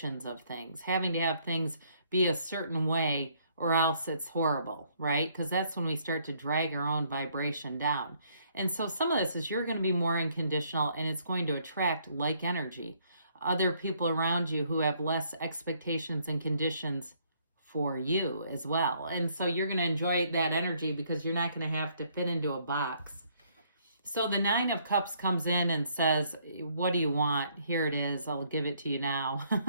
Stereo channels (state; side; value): inverted; both; correlation -0.67